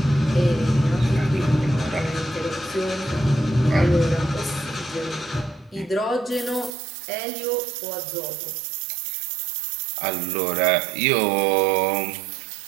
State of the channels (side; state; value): left; drops out; at 6.7 s